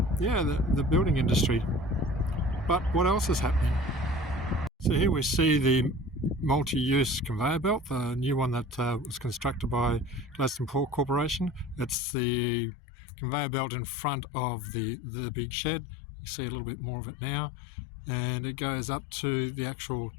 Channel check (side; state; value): right; drops out; at 12.0 s